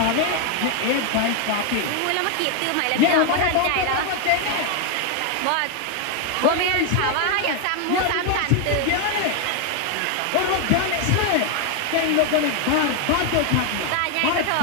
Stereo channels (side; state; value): both; different; correlation 0.01